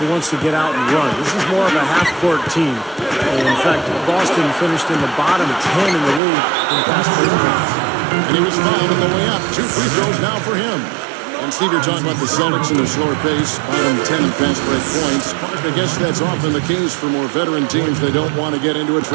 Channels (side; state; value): left; drops out; at 6.2 s